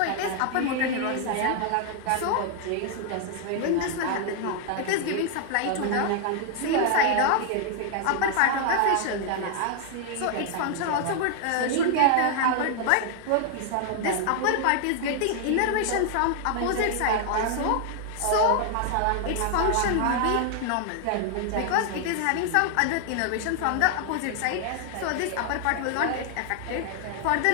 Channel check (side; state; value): both; different; correlation 0.00